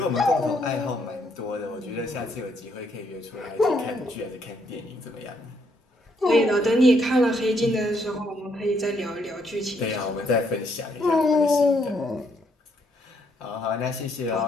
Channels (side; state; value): both; normal; correlation 0.72